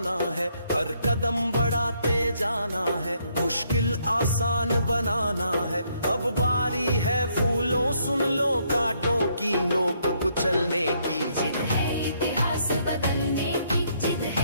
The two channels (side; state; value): both; inverted; correlation -0.71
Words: है। हर कदम बढ़ाते जाना है, मुश्किल आसान बनाना है। अब बारी है फूलों सुन लो कांटों की, नोक कुचलने की। जिद है इतिहास बदलने की, जिद